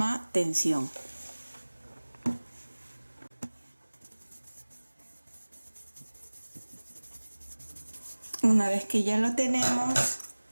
tensión. Una vez que ya lo tenemos,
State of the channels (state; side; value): inverted; both; correlation -1.00